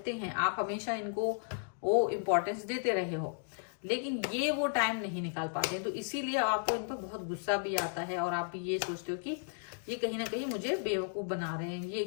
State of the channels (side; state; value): right; silent; digital silence